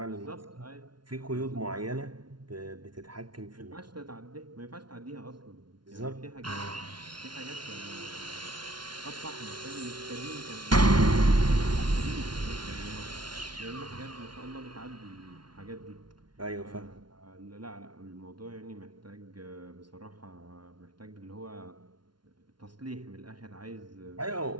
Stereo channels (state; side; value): late; left; 0.71 ms